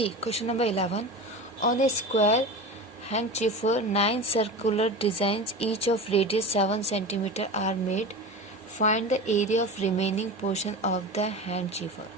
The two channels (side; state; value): both; normal; correlation 0.29